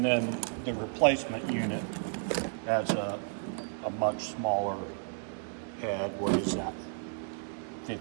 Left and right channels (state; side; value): silent; left; 56 dB below the other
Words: then the replacement unit has a much smaller head. What is that?